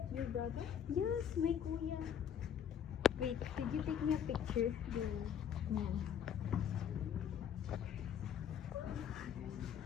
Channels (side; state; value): right; quieter; 8.6 dB